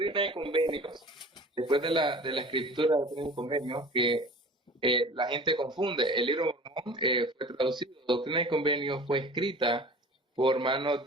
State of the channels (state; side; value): normal; both; correlation 0.42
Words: y Convenios, después de la escritura de Doctrina y Convenios, que la gente confunde, el libro de Mormón fue traducido, Doctrina y Convenios fue escrita por manos